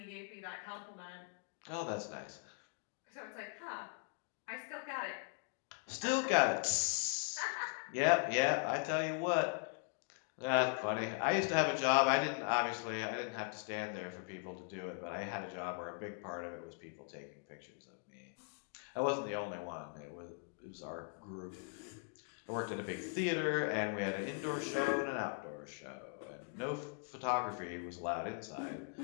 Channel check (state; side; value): silent; right; 51 dB below the other